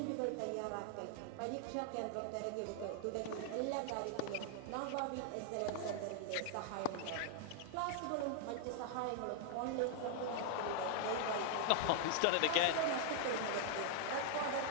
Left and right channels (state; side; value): different; both; correlation 0.00